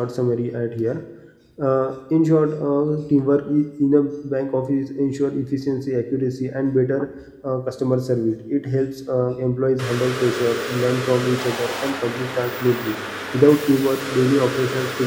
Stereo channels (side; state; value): both; identical; correlation 1.00